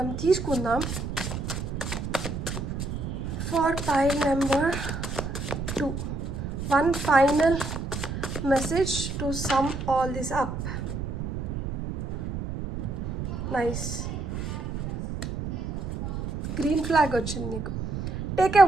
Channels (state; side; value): noise; right; rumble, 5 dB below the sound